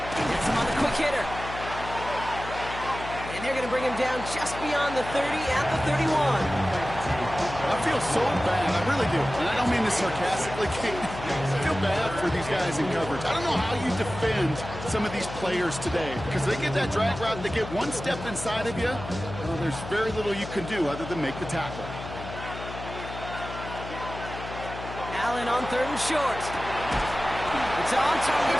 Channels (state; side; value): noise; left; hum, 10 dB below the sound